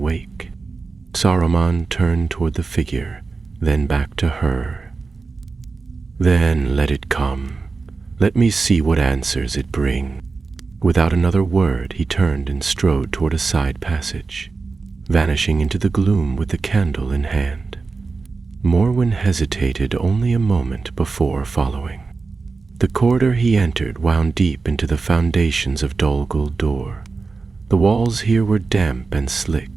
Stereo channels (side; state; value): left; quieter; 4.2 dB